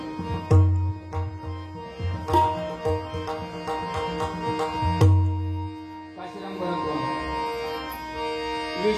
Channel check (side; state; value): both; identical; correlation 1.00